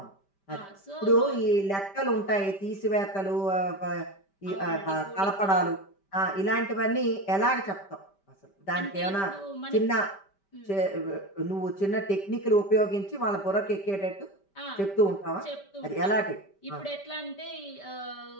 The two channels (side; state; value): right; late; 5.1 ms